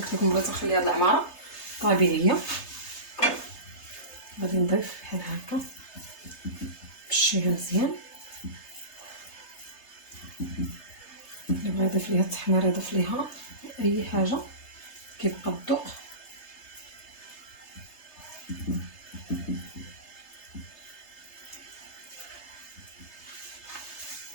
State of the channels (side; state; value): right; late; 3.3 ms